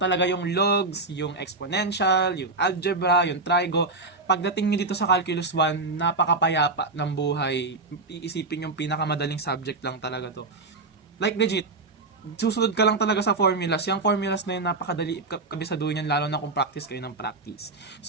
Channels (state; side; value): quieter; left; 3.5 dB